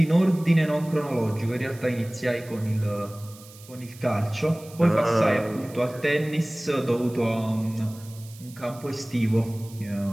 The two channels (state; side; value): noise; right; hiss, 21 dB below the sound